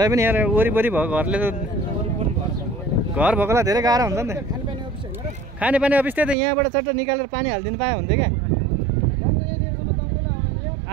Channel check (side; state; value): left; drops out; at 6.4 s